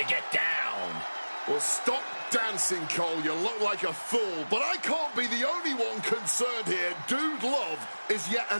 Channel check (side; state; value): both; inverted; correlation -1.00